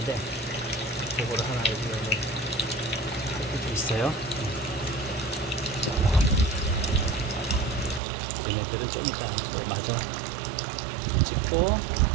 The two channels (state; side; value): drops out; left; at 8.0 s